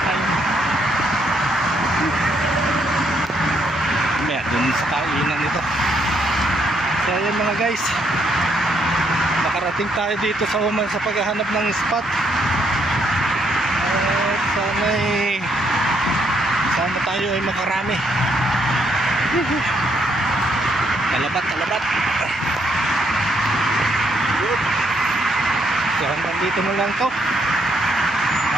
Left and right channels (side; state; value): both; normal; correlation 0.73